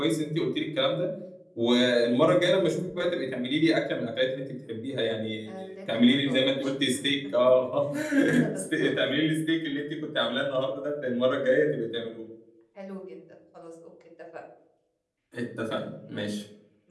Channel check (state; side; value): identical; both; correlation 1.00